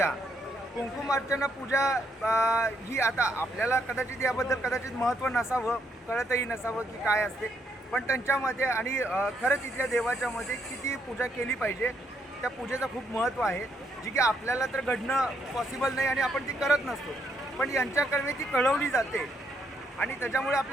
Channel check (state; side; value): normal; both; correlation 0.74